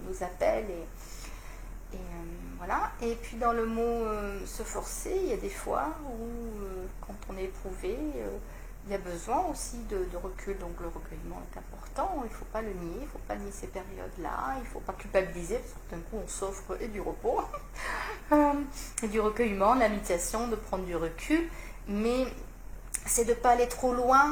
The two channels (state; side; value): identical; both; correlation 1.00